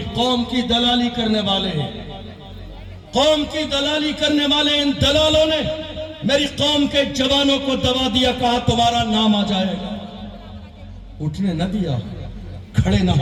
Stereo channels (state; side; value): identical; both; correlation 1.00